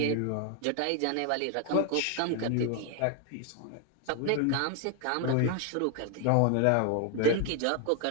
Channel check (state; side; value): different; both; correlation 0.00